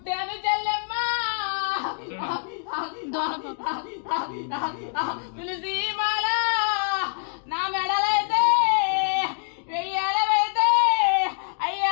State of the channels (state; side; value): silent; right; 62 dB below the other